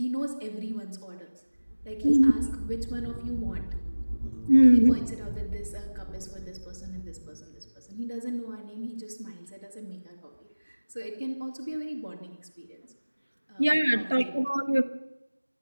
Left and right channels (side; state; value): both; inverted; correlation -1.00